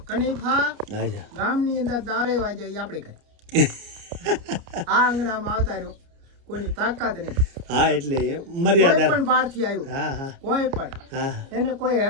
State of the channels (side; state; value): left; late; 29 ms